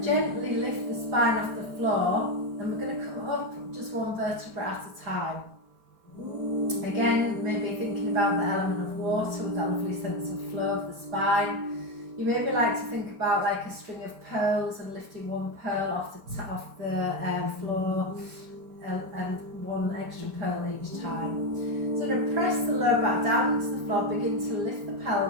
gently lift the spine off the floor and we're going to come up just one vertebra at a time. Again, maybe thinking about the element of water with that lovely sense of flow of the spine. You maybe like to think about like a string of pearls and lifting one pearl off the floor and one extra pearl each time. So to press the lower back down into the floor, begin to lift the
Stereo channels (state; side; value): late; left; 4.7 ms